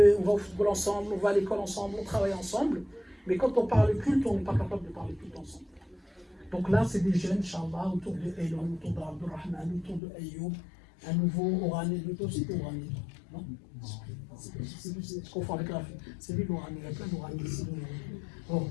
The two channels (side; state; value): right; drops out; at 10.0 s